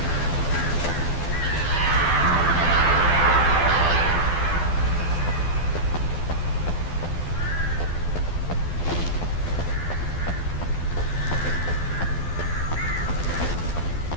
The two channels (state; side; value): late; right; 12 ms